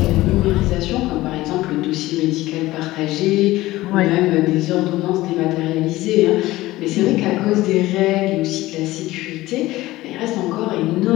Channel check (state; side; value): quieter; right; 17.6 dB